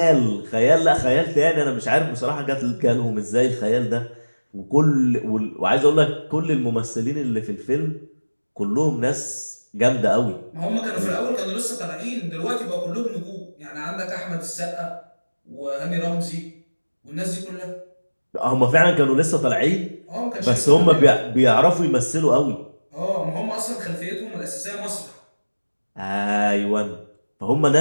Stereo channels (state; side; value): inverted; both; correlation -1.00